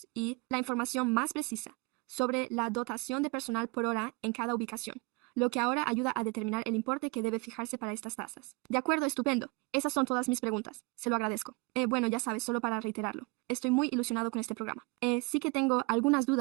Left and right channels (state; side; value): quieter; left; 27.6 dB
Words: y la información más precisa sobre la dotación de personal por hora en cada ubicación, lo que ahora ayuda a determinar el importe que debe fijarse para estas tasas. De acuerdo, estupendo. Esas son todas mis preguntas. Se lo agradezco. Bueno, ya sabes, solo para reiterarlo. Estoy muy ilusionado con este programa. Sí que tengo algunas